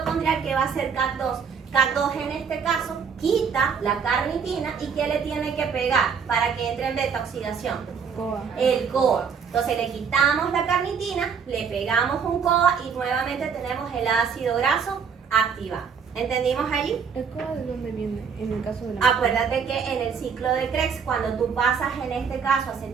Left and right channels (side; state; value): left; quieter; 6.4 dB